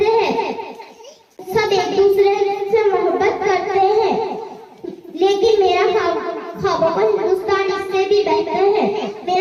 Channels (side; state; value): both; identical; correlation 1.00